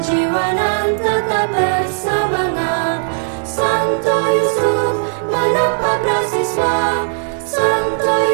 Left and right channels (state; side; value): silent; left; 65 dB below the other